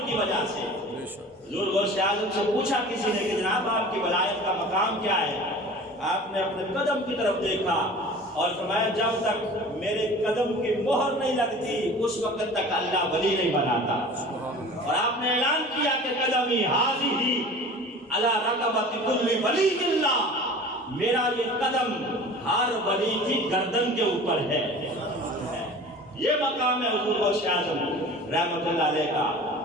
کی وجہ سے۔ حضور غوث اعظم سے پوچھا کسی نے کہ جناب آپ کی ولایت کا مقام کیا ہے؟ آپ نے اپنے قدم کی طرف دیکھا اور فرمایا جب تک میرے قدم کی مہر نہیں لگتی اس وقت تک اللہ ولی نہیں بناتا۔ اور آپ نے اعلان کیا کہ قدمی حاضی علی رقبۃ کل ولی اللہ، میرا یہ قدم ہر ولی کی گردن کے اوپر ہے۔ یہ مقام ہے حضور غوث اعظم رحمت اللہ علیہ کا۔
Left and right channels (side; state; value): both; normal; correlation 0.40